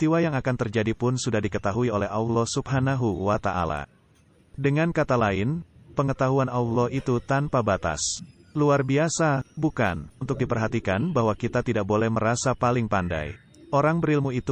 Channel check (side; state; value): both; identical; correlation 1.00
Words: yang akan terjadi pun sudah diketahui oleh Allah Subhanahu wa Ta'ala. Dengan kata lain, pengetahuan Allah itu tanpa batas. Luar biasa, bukan? Untuk diperhatikan bahwa kita tidak boleh merasa paling pandai. Orang berilmu